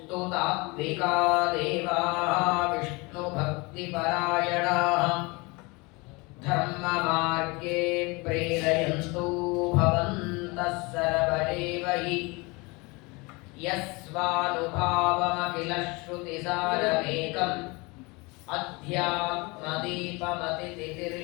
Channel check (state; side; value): quieter; right; 26.2 dB